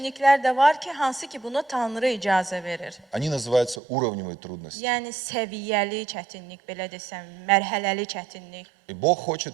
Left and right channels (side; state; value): left; drops out; at 3.8 s